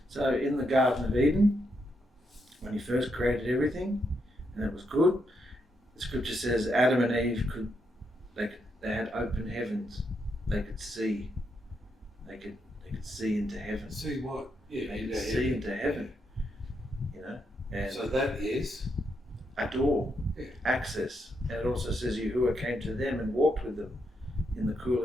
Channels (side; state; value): both; normal; correlation 0.80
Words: So in the Garden of Eden, when he first created everything, and it was good, the scripture says Adam and Eve they had open heavens. They could see. They could see into heaven. See what? Yeah, They could into see heaven. into heaven. You know, and So that is. a door, Yeah. access. And it also says Yahuah came to them and walked with them in the cool